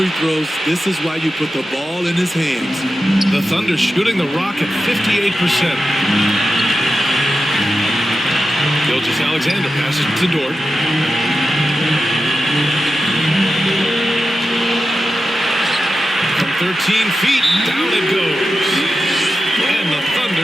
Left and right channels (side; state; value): both; normal; correlation 0.91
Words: throws. This is why you put the ball in his hands. The Thunder shooting the rock at 58%. Gilgeous-Alexander passes to Dort. From 13 feet, down it goes. And the